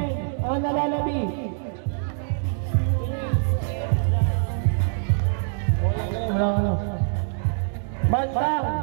Ang nalalabi. Bantang,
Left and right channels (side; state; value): left; silent; 62 dB below the other